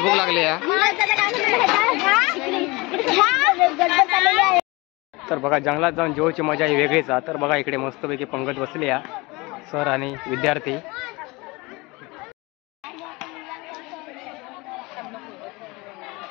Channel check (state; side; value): quieter; right; 24.3 dB